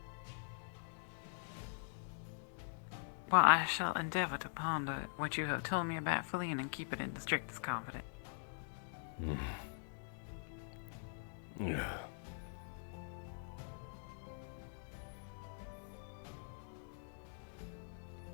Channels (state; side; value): silent; right; digital silence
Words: Well, I shall endeavor to ponder what you have told me about Feline and keep it in the strictest confidence. Yeah.